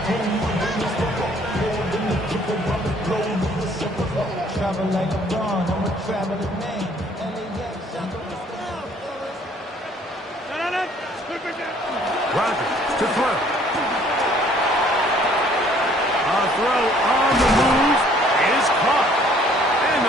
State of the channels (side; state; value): both; normal; correlation 0.59